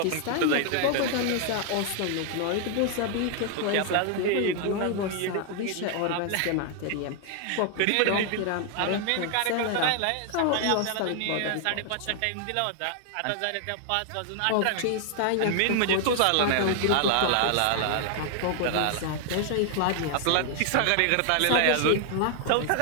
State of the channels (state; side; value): different; both; correlation 0.00